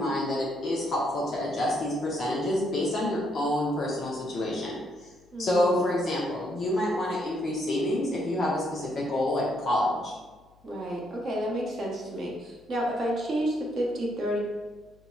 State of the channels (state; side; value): noise; left; hum, 30 dB below the sound